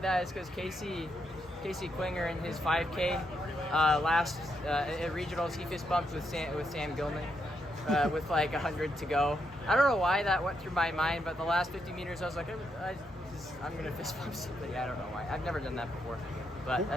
that is because Casey Klinger in his 5K last at regionals, he fist bumped with Sam Gilman with like 100 to go. I don't know why that went through my mind, but the last 50 meters I was like, I'm gonna fist bump somebody. I don't know why. I've never done that before, but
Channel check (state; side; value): normal; both; correlation 0.80